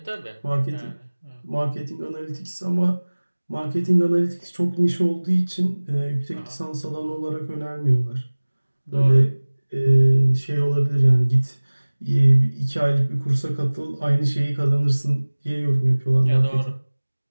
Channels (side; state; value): both; inverted; correlation -1.00